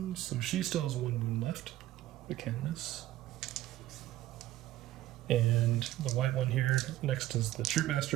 So she still has 1 wound left. The Canoness. And the white one here next is the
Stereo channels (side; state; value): left; quieter; 14.7 dB